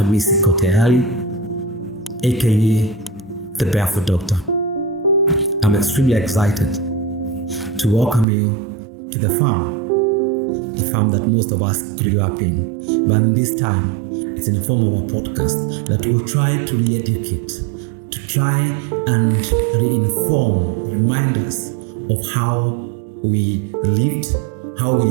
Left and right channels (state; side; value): drops out; left; at 8.2 s